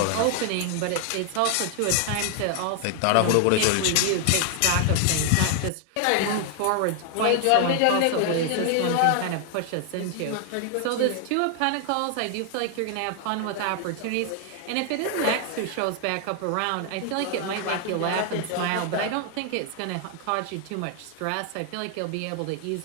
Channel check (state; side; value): different; both; correlation 0.00